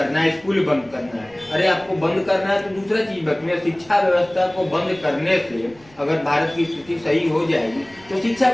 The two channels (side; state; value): right; noise; rumble, 26 dB below the sound